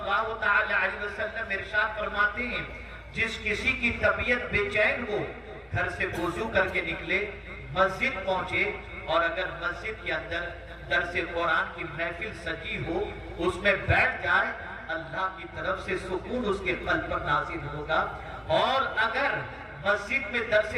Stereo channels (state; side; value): identical; both; correlation 1.00